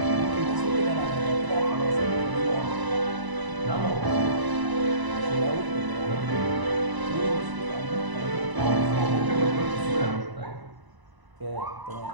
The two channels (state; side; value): late; left; 1.0 ms